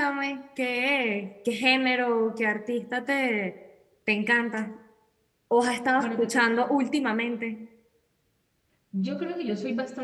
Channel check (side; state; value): both; identical; correlation 1.00